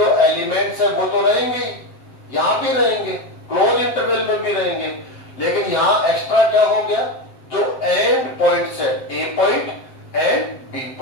एलिमेंट्स है वो तो रहेंगे ही, यहां भी रहेंगे, क्लोज इंटरवल में भी रहेंगे, लेकिन यहां एक्स्ट्रा क्या हो गया, जो एंड पॉइंट्स है ए पॉइंट एंड बी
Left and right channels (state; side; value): late; right; 7.7 ms